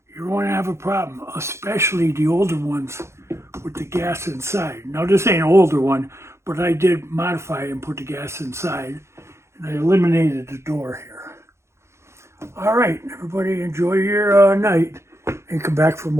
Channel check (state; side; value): late; left; 0.13 ms